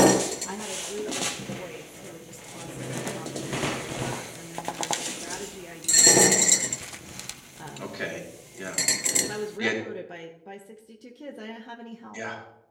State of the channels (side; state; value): both; identical; correlation 1.00